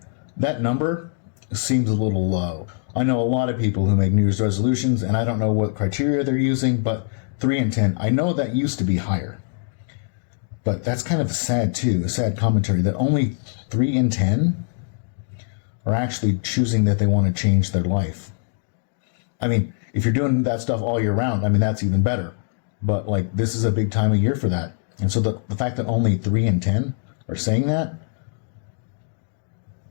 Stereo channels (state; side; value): silent; right; digital silence